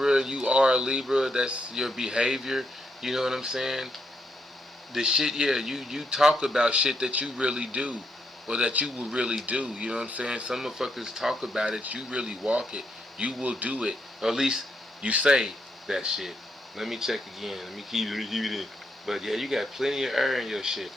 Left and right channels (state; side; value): normal; both; correlation 0.78